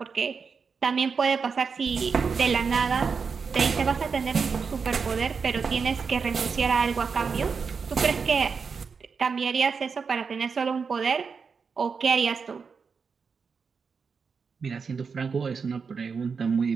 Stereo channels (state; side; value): quieter; left; 5.5 dB